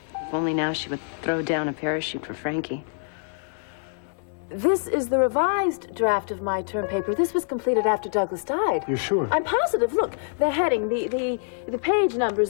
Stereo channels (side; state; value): right; silent; 61 dB below the other